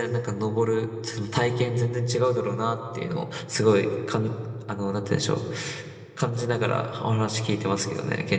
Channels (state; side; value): identical; both; correlation 1.00